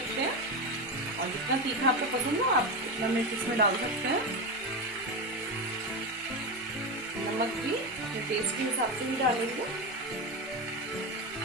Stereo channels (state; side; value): normal; both; correlation 0.16